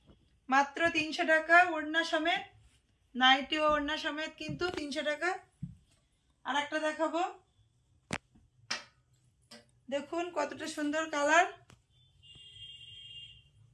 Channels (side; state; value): both; identical; correlation 1.00